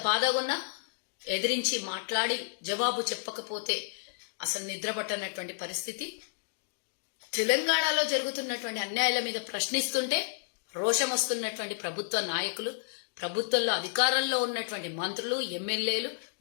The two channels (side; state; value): right; silent; digital silence